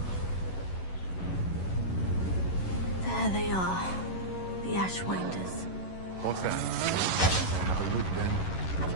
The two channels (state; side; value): late; right; 11 ms